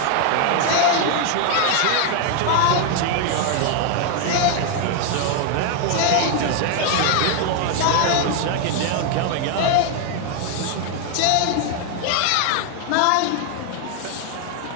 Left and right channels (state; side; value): different; both; correlation 0.01